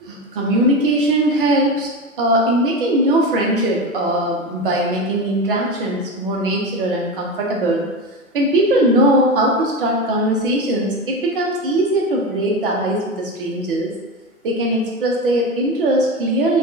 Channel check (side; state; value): both; normal; correlation 0.22